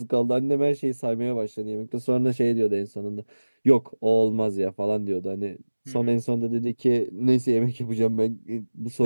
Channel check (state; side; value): inverted; both; correlation -1.00